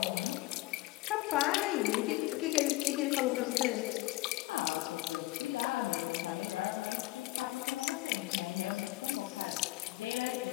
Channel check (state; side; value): quieter; right; 20.0 dB